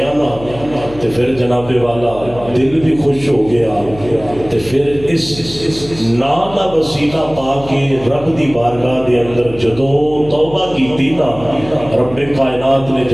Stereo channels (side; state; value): left; noise; hum, 16 dB below the sound